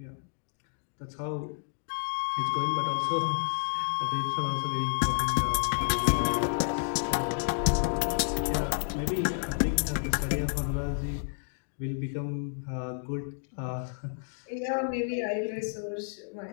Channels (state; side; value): silent; right; digital silence